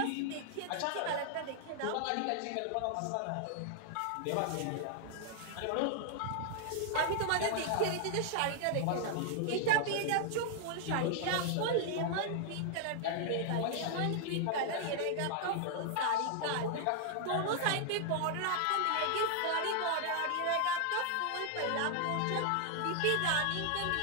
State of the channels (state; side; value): different; both; correlation 0.00